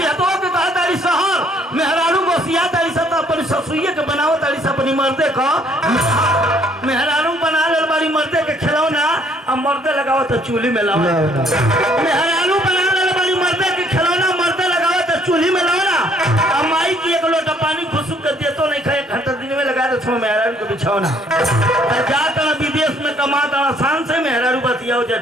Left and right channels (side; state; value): both; normal; correlation 0.63